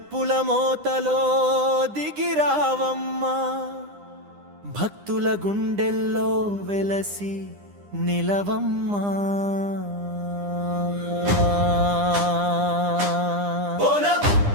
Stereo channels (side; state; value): left; late; 9.9 ms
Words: మోతలో దిగిరావమ్మా భక్తుల గుండెల్లో వెలసి నిలవమ్మా బోనం